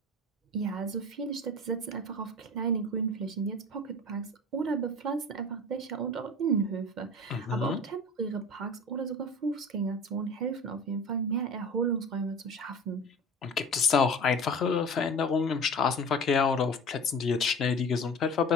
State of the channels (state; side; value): normal; both; correlation 0.37